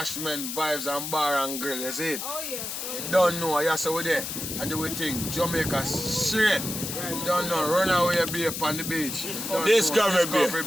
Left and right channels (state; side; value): noise; left; hiss, 5 dB below the sound